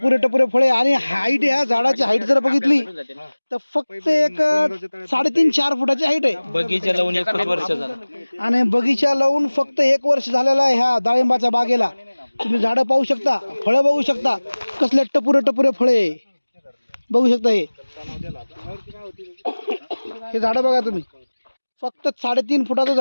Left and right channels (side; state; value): both; inverted; correlation -1.00